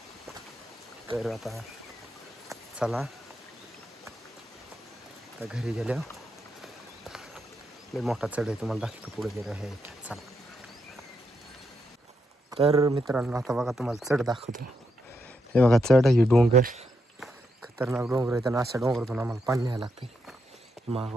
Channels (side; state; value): both; normal; correlation 0.81